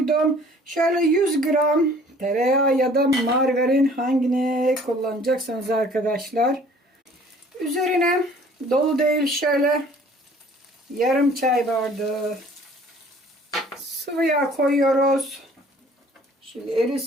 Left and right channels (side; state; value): both; normal; correlation 0.53